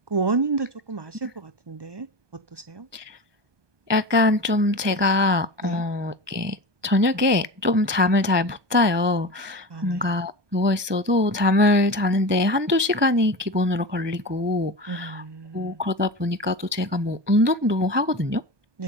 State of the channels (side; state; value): left; late; 1.2 ms